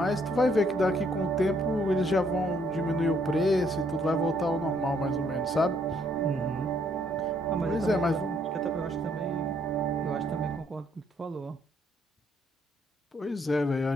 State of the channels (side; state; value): both; normal; correlation 0.69